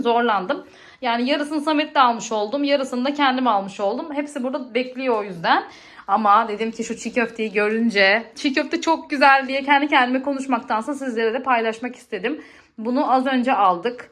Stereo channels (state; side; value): identical; both; correlation 1.00